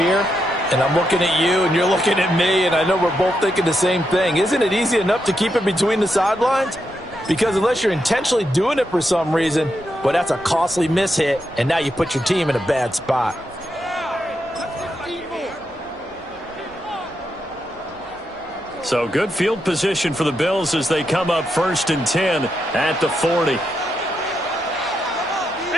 and I'm looking at you, and you're looking at me, and I know we're both thinking the same thing. Isn't it easy enough to keep it between the sidelines? Because unless you're intentionally doing it for some reason, well, that's a costly mishit, and now you put your team in a bad spot. So good field position for the Bills as they come up 1st and 10 at the 40.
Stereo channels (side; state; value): right; noise; hum, 30 dB below the sound